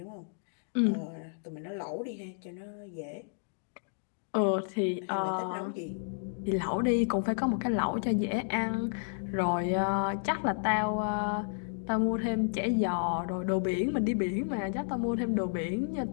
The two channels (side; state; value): right; silent; digital silence